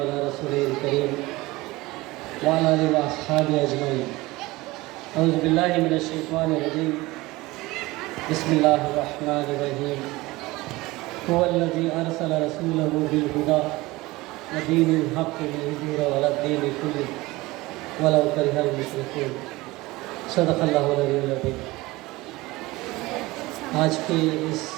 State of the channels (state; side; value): quieter; left; 20.5 dB